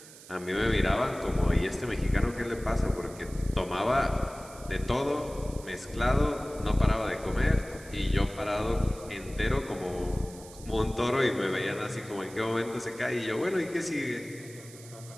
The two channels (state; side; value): noise; right; hiss, 19 dB below the sound